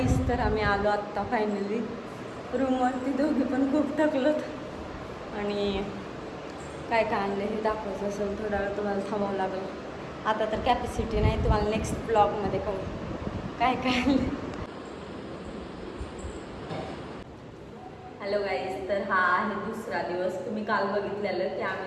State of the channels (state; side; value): identical; both; correlation 1.00